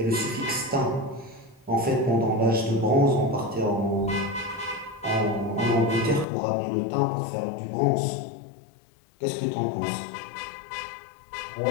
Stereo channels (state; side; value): drops out; right; at 6.2 s